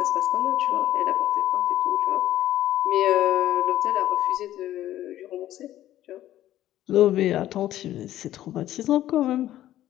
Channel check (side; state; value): right; quieter; 13.3 dB